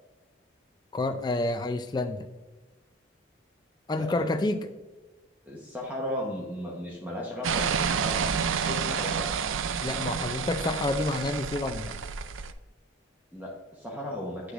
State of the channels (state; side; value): normal; both; correlation 0.32